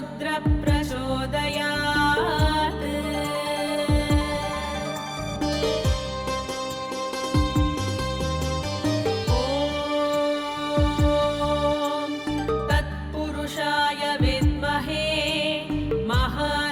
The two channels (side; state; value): both; identical; correlation 1.00